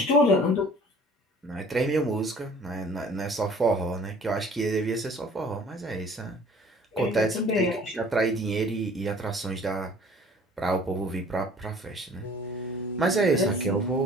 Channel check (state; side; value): normal; both; correlation 0.51